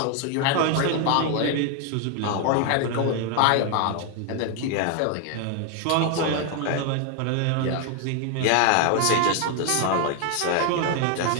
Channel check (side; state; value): both; different; correlation 0.01